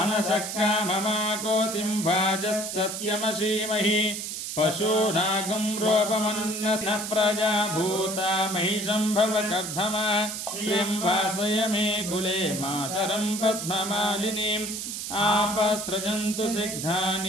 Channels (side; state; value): right; noise; hiss, 5 dB below the sound